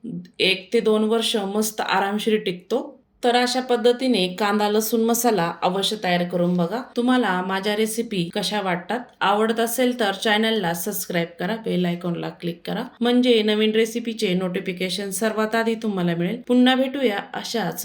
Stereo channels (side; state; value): both; identical; correlation 1.00